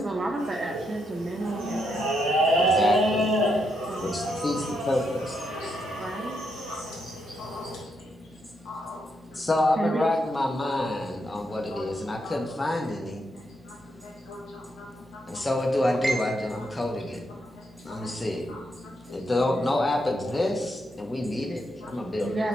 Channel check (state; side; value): normal; both; correlation 0.80